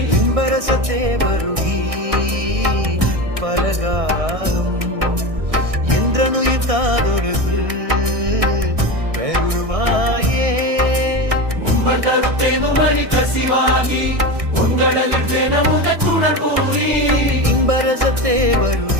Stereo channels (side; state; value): left; late; 1.6 ms